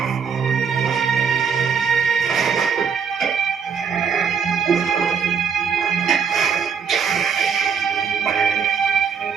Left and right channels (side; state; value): left; quieter; 6.5 dB